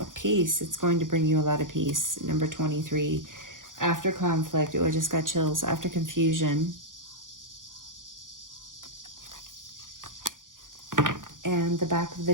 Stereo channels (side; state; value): left; late; 0.89 ms